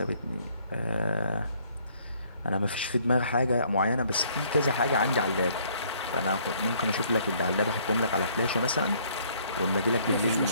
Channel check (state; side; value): inverted; both; correlation -0.63